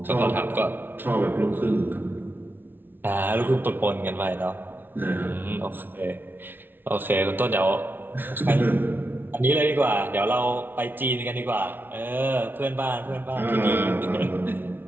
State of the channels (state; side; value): late; left; 0.098 ms